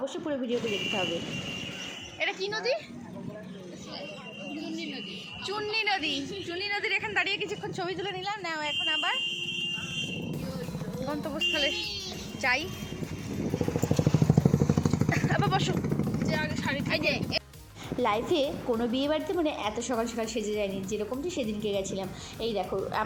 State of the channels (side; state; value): both; identical; correlation 1.00